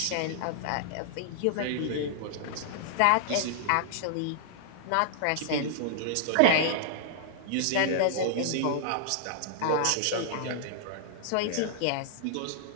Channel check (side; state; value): both; different; correlation -0.01